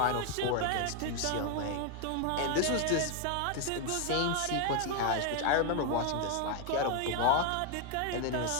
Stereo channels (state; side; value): different; both; correlation 0.01